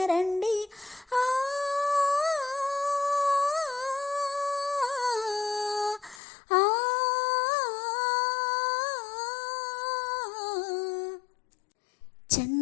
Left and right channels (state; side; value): drops out; right; at 6.2 s